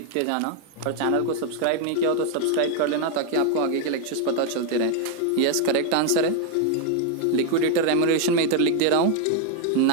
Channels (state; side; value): different; both; correlation 0.01